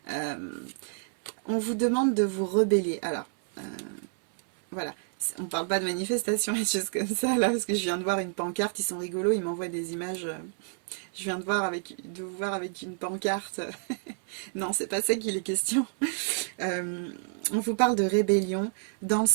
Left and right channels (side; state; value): left; silent; 58 dB below the other